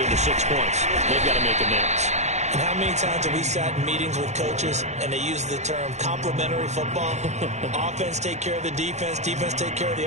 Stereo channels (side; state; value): left; late; 0.33 ms